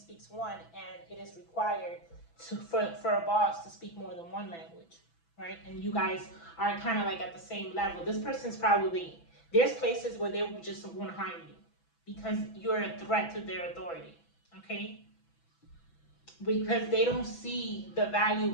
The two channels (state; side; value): late; right; 6.0 ms